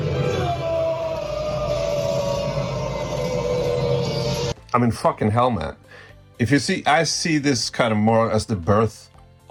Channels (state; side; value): identical; both; correlation 1.00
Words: I mean, fucking hell, man. If you see, I see this kind of more as the birth